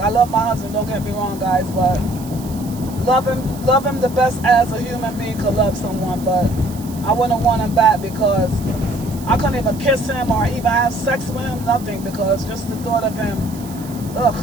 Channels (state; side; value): noise; right; hiss, 18 dB below the sound